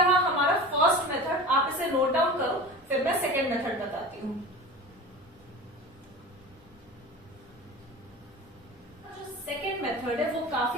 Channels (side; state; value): both; normal; correlation 0.34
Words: हमारा फर्स्ट मेथड, आप इसे नोट डाउन करो, फिर मैं सेकेंड मेथड बताती हूँ। जो सेकेंड मेथड है वो